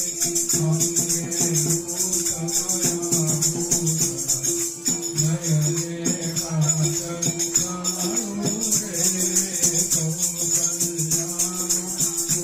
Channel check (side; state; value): both; identical; correlation 1.00